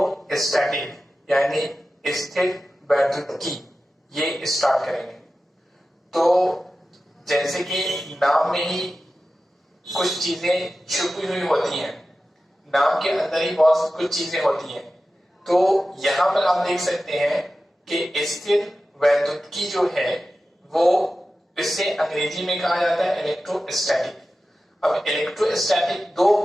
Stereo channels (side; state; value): both; normal; correlation 0.94